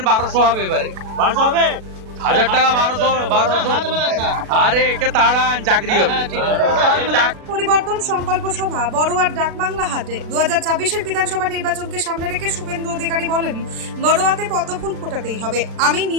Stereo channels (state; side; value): late; left; 36 ms